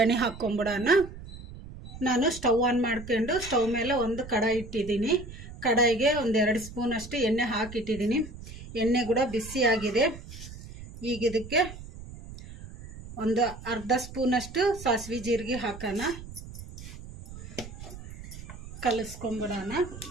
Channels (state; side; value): noise; right; rumble, 14 dB below the sound